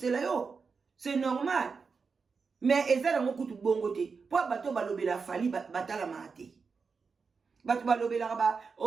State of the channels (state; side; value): quieter; left; 5.1 dB